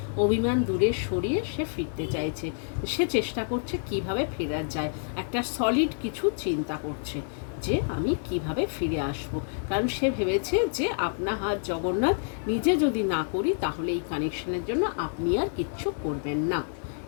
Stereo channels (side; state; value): right; silent; 59 dB below the other